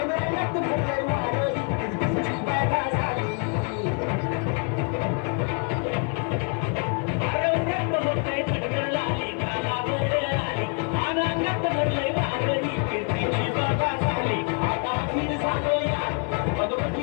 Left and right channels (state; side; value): quieter; right; 39.0 dB